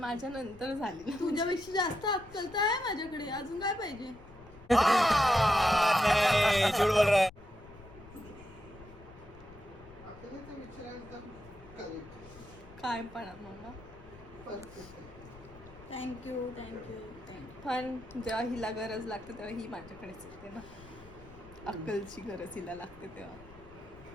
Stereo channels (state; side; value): noise; left; rumble, 21 dB below the sound